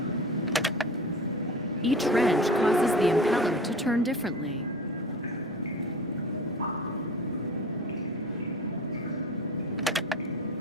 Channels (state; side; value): normal; both; correlation 0.36